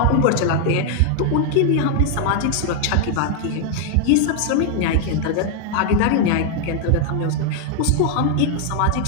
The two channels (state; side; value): different; both; correlation 0.00